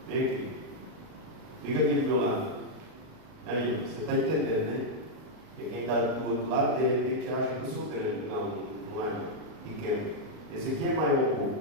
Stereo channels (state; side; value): late; left; 38 ms